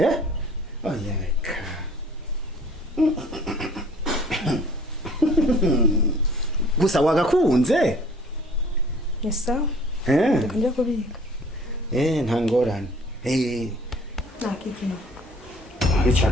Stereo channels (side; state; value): both; normal; correlation 0.52